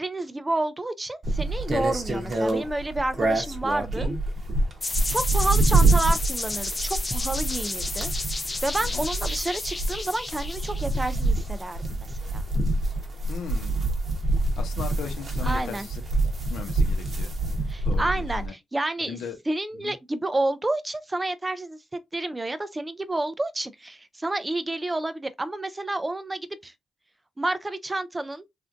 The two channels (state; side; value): normal; both; correlation 0.85